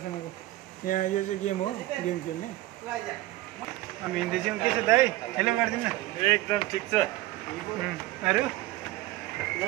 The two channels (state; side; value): quieter; left; 17.4 dB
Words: यहाँ यो चाहिँ गेम हो गेम खेल्ने हामी हिँड्दैछौँ के छ दाइ हेलो गरिदिनु न एकदम ठिक छ अरू